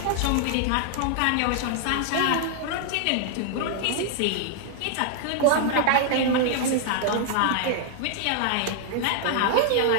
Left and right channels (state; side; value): different; both; correlation 0.00